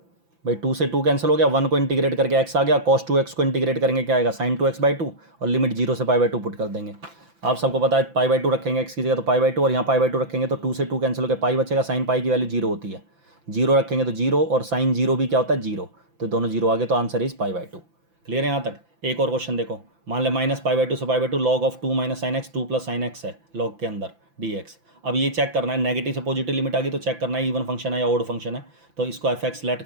भाई, 2 से 2 कैंसिल हो गया, 1 को इंटीग्रेट करके x आ गया, cos 2x को इंटीग्रेट करेंगे क्या आएगा, sin 2x/2, और लिमिट 0 से π/2 पुट कर देंगे। आप सबको पता है π/2 रखेंगे x की जगह तो π/2, और यहाँ π/2 रखेंगे तो 2 से 2 कैंसिल होकर पाई बचेगा, साइन पाई की वैल्यू 0 होती है, 0 रखेंगे तो 0, और साइन 0 भी क्या होता है 0, तो दोनों 0 आ गए, तो आंसर इज π/2। क्लियर है यहाँ तक। एक और क्वेश्चन देखो, मान ले -π/2 से π/2 log of 2 - sin x 2 + sin x है लॉग के अंदर dx। अब ये चेक करना है, नेगेटिव से पॉजिटिव लिमिट आ गई तो चेक करना है इवन फंक्शन है या ओड फंक्शन है। तो इसको एफ एक्स लेट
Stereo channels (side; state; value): left; late; 5.9 ms